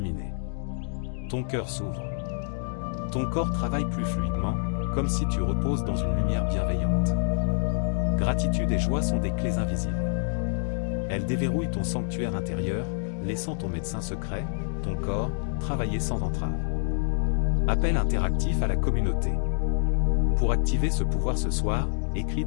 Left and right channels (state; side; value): silent; right; 60 dB below the other